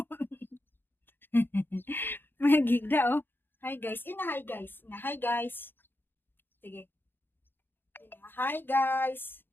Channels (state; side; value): late; right; 0.10 ms